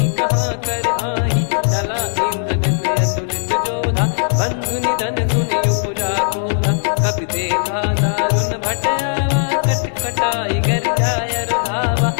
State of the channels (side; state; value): right; silent; 67 dB below the other